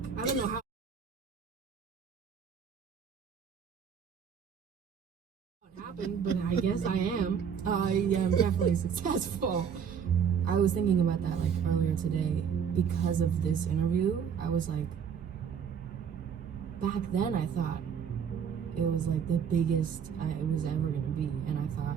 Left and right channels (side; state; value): left; quieter; 7.3 dB